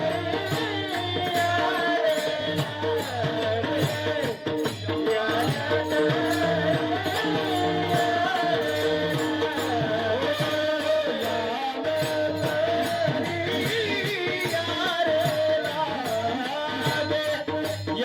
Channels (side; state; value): both; identical; correlation 1.00